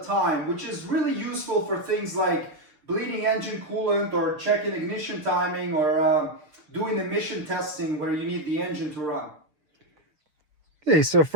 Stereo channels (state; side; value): late; left; 6.8 ms